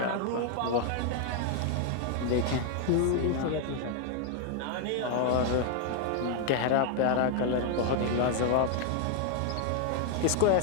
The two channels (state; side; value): different; both; correlation 0.00